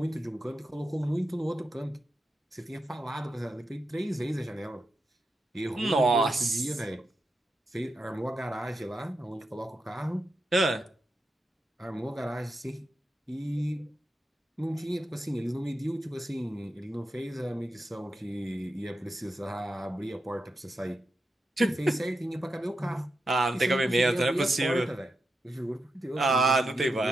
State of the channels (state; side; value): normal; both; correlation 0.87